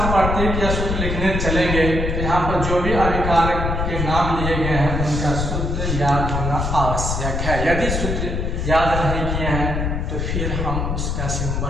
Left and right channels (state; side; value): noise; left; rumble, 1 dB below the sound